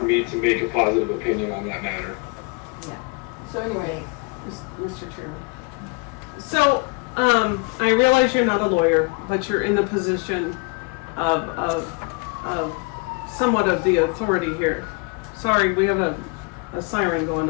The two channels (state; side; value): quieter; right; 30.9 dB